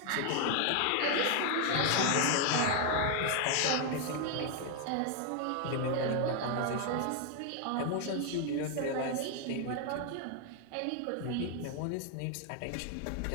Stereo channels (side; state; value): both; different; correlation 0.00